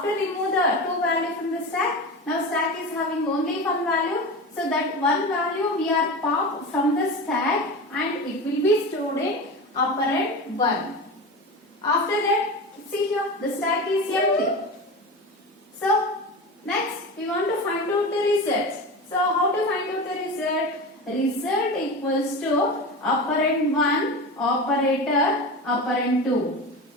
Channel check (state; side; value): normal; both; correlation 0.26